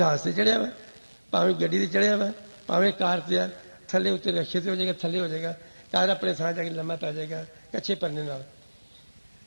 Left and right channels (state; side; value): inverted; both; correlation -1.00